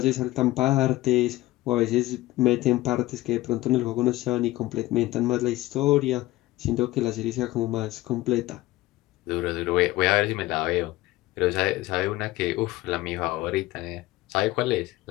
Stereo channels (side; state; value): right; quieter; 17.7 dB